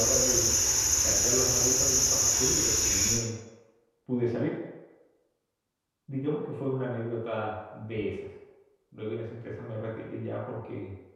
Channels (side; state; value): both; identical; correlation 1.00